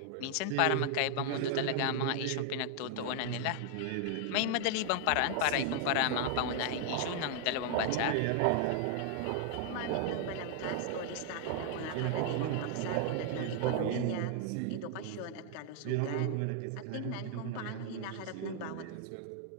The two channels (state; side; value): different; both; correlation 0.00